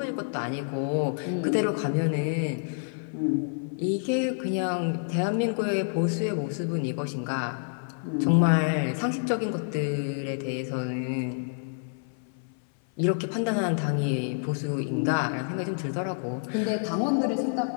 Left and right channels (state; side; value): silent; right; 59 dB below the other